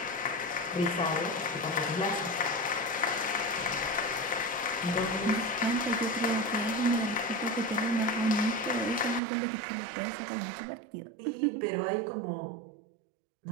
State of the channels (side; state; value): left; drops out; at 9.2 s